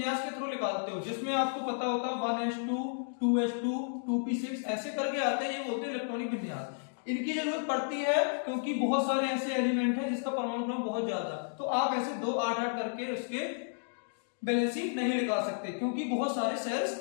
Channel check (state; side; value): silent; right; digital silence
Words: के थ्रू निकालते हो जिसमें आपको पता होता है 1s2 2s2 2p6 ऐसे करके आते हैं, ये बोलते हैं इलेक्ट्रॉनिक विन्यास। इनकी जरूरत पड़ती है क्योंकि बहुत सारे ऐसे एलिमेंट हैं जिसका परमाणु क्रमांक बहुत ज्यादा, तो आप ऐसे 2 8 8 करके उसके बैलेंसी नहीं निकाल सकते क्योंकि बहुत सारे